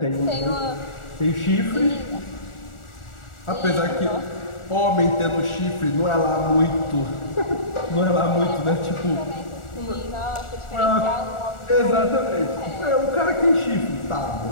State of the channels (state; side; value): late; right; 1.4 ms